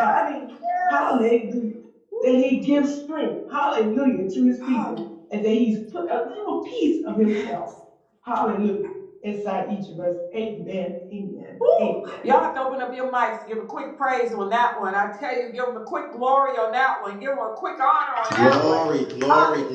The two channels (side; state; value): both; identical; correlation 1.00